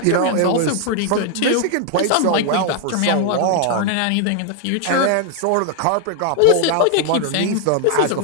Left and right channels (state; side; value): different; both; correlation 0.00